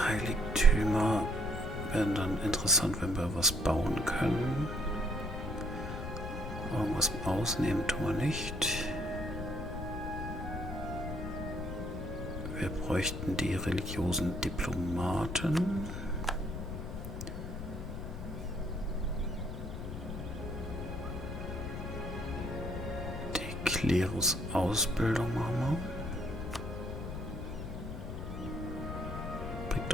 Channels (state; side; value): noise; left; rumble, 6 dB below the sound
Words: Heiligtümer werden dann interessant, wenn wir was bauen können. Irgendwas ausnehmen tun wir nicht. Wir bräuchten die religiösen Diplomaten. Die Klerusausbildung machen wir. Bringt